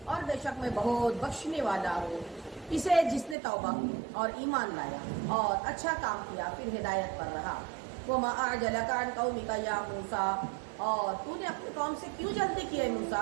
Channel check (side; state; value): left; drops out; at 3.4 s